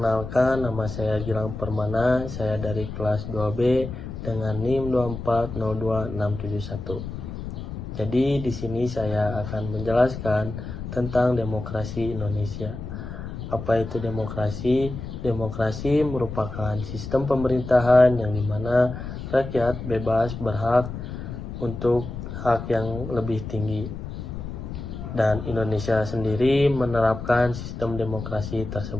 nama saya Gilang Permana, saya dari kelas 2B dengan NIM 2402671. Jadi di sini saya akan menjelaskan tentang demokrasi Indonesia. Apa itu demokrasi? Demokrasi merupakan sistem pemerintahan yang dimana rakyat bebas berhak untuk hak yang lebih tinggi. Dan Indonesia sendiri menerapkan sistem demokrasi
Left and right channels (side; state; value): left; noise; rumble, 8 dB below the sound